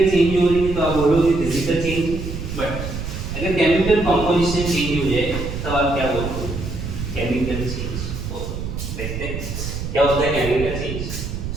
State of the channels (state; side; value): noise; right; rumble, 6 dB below the sound